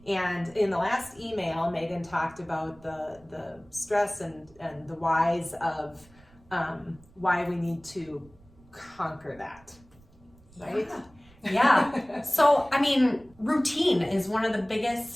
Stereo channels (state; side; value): noise; right; rumble, 27 dB below the sound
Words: And in the last email, Megan talked about the stress and the whys of why we need to conquer that, right? Yeah. So, I mean, routine is one of the